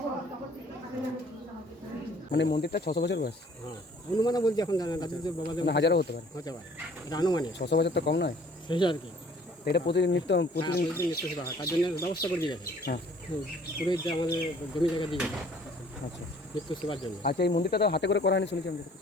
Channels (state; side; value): normal; both; correlation 0.56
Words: মানে মন্দিরটা 600 বছর বয়স। হ্যাঁ, অনুমানে বলছি, এখন জানেন রাজুদের বাবাদের মানে হাজারও হতে পারে। এটা আনুমানিক 600 বছর তো কম নয়, সেই আর কি। এটা প্রতিদিন প্রতিদিন প্রতিদিন নিত্য সেবা হয়, তার জন্য ব্যবস্থা করে দিয়ে গেছে। হ্যাঁ, পুরোহিত যে আমাদের জমি জায়গা দিয়ে গেছে আচ্ছা নিত্য সেবার জন্য। আচ্ছা, এই মন্দিরটা তো হাতে করে করা হয়নি শুনেছি আমি।